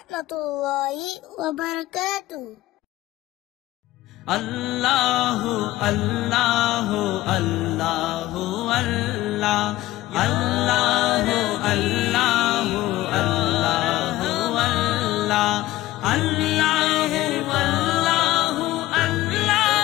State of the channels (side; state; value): right; quieter; 16.4 dB